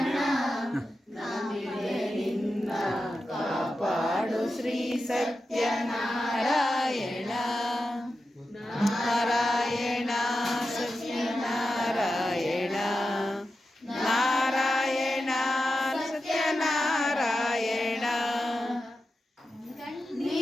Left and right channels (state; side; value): normal; both; correlation 0.91